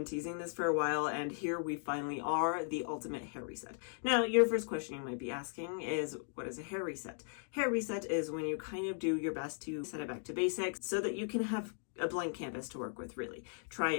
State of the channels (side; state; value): right; silent; 53 dB below the other